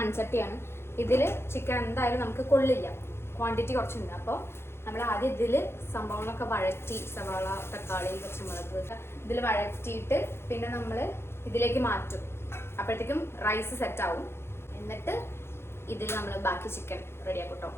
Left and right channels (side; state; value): right; late; 0.12 ms